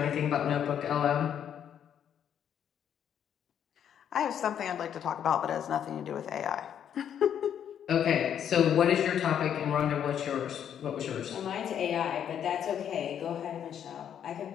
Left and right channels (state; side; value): quieter; right; 9.1 dB